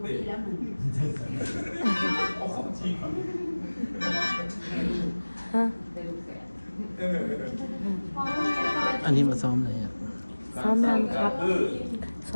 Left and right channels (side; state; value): both; inverted; correlation -1.00